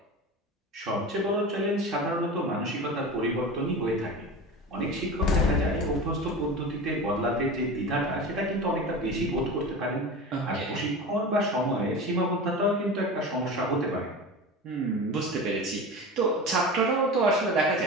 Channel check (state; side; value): normal; both; correlation 0.30